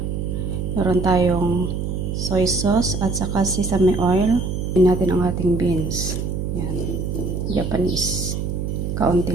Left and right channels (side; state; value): right; noise; hum, 3 dB below the sound